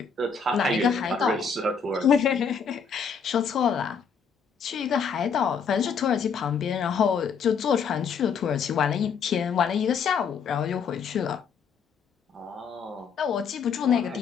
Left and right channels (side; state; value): right; quieter; 6.1 dB